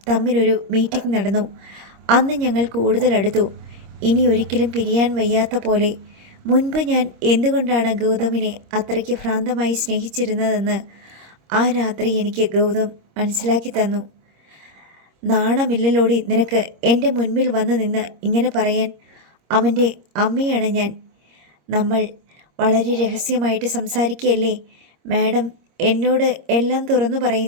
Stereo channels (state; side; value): late; left; 26 ms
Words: തമ്മിലൊരു മീറ്റിംഗ് നടന്നു. അന്ന് ഞങ്ങൾ കൂടുതൽ അടുത്തു. ഇനി ഒരിക്കലും പിരിയാൻ വയ്യാത്ത പോലെ. മുൻപ് ഞാൻ എന്തുകൊണ്ടാണ് ഗൗതമിനെ അത്രയ്ക്ക് ഭ്രാന്തമായി സ്നേഹിച്ചിരുന്നതെന്ന് ആ രാത്രി എനിക്ക് ഗൗതം മനസ്സിലാക്കി തന്നു. നാണമില്ലല്ലോടി നിനക്ക് എൻ്റെ മുൻപിൽ വന്ന് നിന്ന് ഇങ്ങനെ പറയാൻ? അവൻ്റെ അമ്മയാണ് ഞാൻ. നമ്മൾ വളരെ രഹസ്യമായിട്ട് സംസാരിക്കുകയല്ലേ? മാഡം എന്നോട് എല്ലാം തുറന്നു